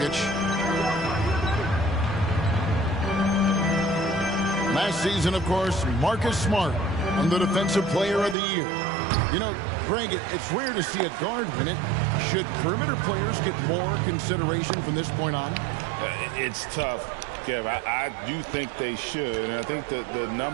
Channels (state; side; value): drops out; left; at 8.3 s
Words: Last season, of course, Marcus Smart won the Defensive Player of the Year. You know, Greg, it's rare to see a guard win it. Should perimeter players get more consideration from this point on? It's tough, Kev. I do think they should. And I think that the